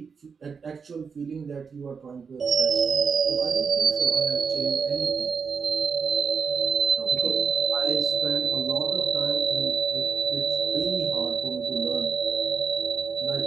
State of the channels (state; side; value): quieter; left; 5.8 dB